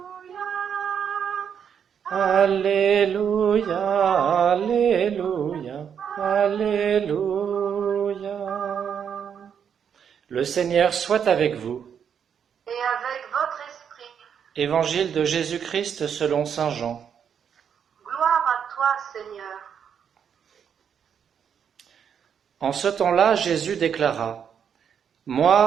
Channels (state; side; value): quieter; left; 7.8 dB